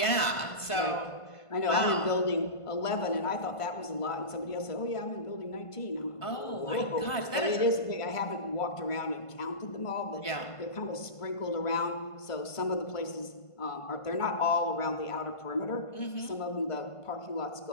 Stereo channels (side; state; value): right; late; 1.5 ms